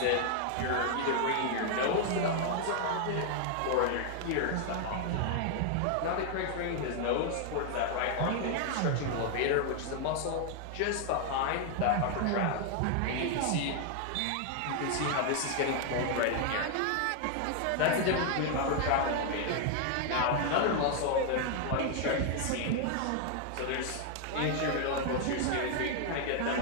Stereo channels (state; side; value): different; both; correlation 0.00